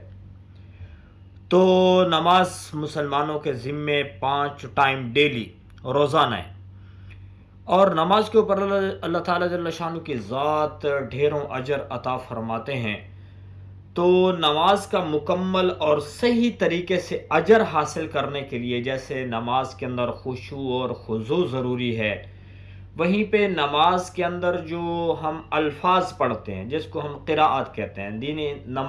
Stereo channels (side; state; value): both; identical; correlation 1.00